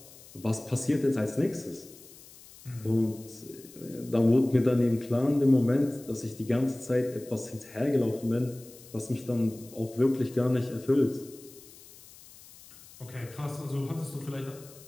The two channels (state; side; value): noise; left; hiss, 21 dB below the sound